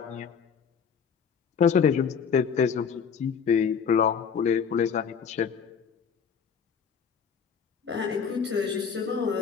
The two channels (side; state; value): right; quieter; 6.6 dB